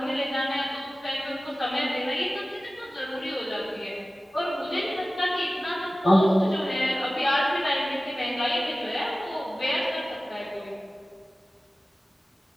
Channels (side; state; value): both; normal; correlation 0.96